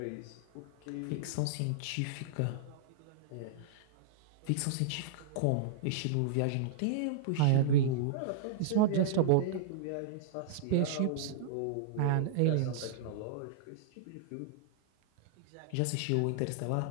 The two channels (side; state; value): both; different; correlation -0.02